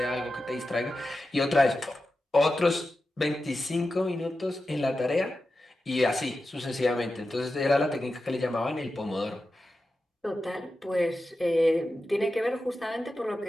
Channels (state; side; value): normal; both; correlation 0.92